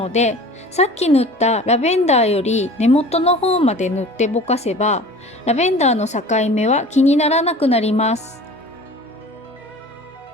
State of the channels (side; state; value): both; normal; correlation 0.42